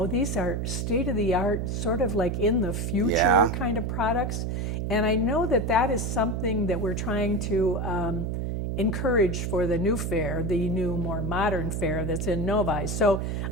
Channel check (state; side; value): noise; right; hum, 2 dB below the sound